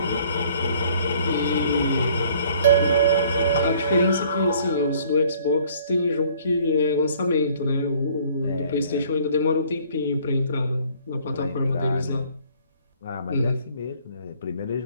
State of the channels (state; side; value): inverted; both; correlation -0.57